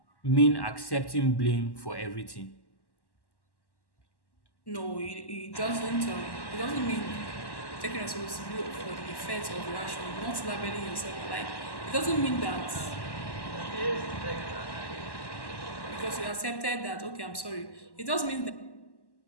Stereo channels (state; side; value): late; right; 1.1 ms